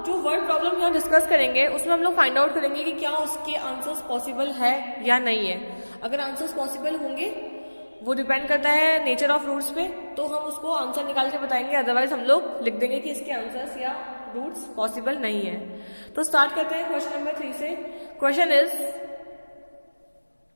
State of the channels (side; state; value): both; inverted; correlation -1.00